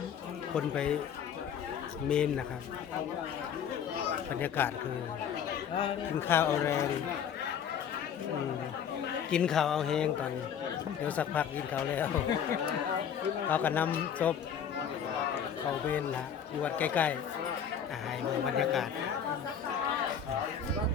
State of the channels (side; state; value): right; quieter; 8.0 dB